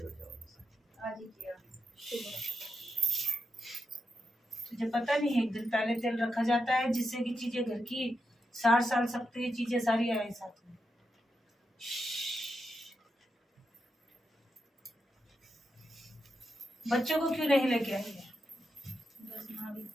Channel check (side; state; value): both; normal; correlation 0.85